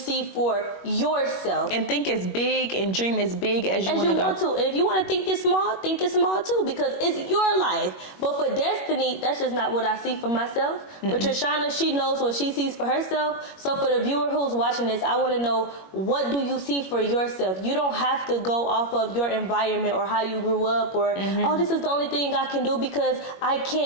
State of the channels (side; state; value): right; late; 21 ms